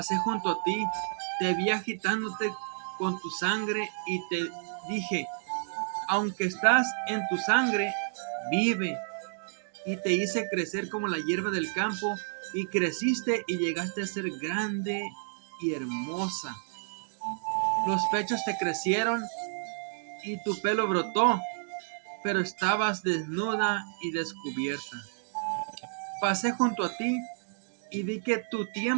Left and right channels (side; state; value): left; silent; digital silence